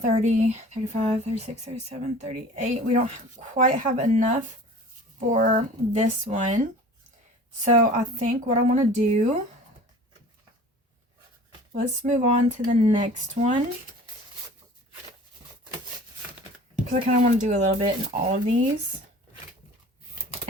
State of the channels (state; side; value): normal; both; correlation 0.43